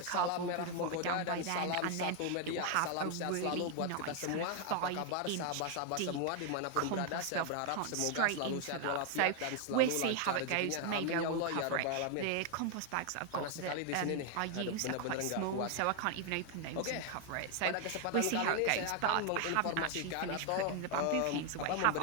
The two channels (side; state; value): both; different; correlation 0.00